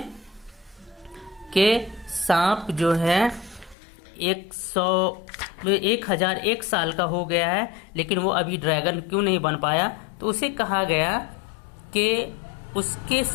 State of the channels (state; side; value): drops out; right; at 3.8 s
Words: कि सांप जो है 1001 साल का हो गया है, लेकिन वो अभी ड्रैगन क्यों नहीं बन पाया। तो उसे कहा गया कि उसके